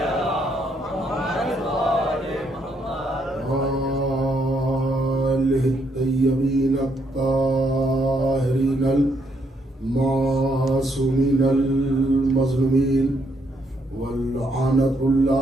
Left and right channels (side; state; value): both; normal; correlation 0.74